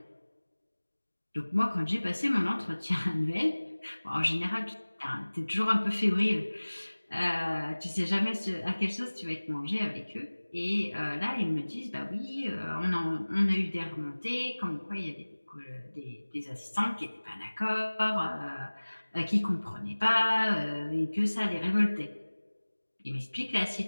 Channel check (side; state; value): both; inverted; correlation -1.00